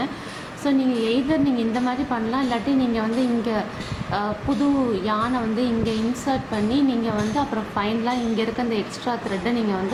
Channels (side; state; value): both; identical; correlation 1.00